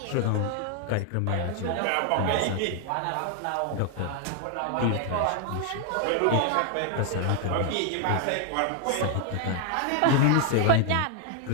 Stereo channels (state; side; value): different; both; correlation 0.00